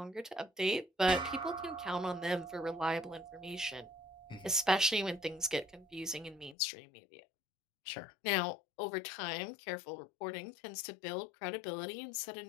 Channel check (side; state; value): right; drops out; at 6.6 s